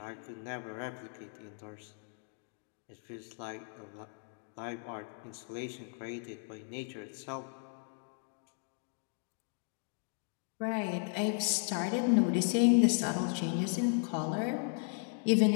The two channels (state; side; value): silent; right; 54 dB below the other